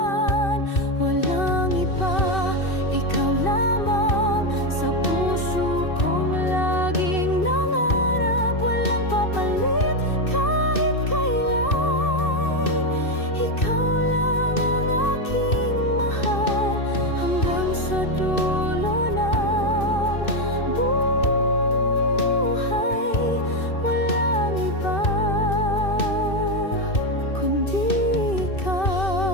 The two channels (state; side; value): late; right; 2.6 ms